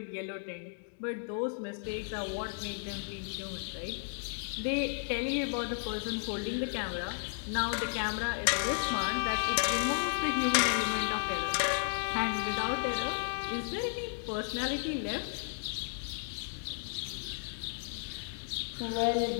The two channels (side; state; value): right; silent; digital silence